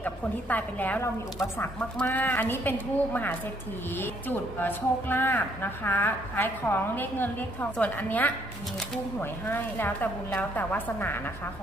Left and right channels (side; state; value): both; normal; correlation 0.68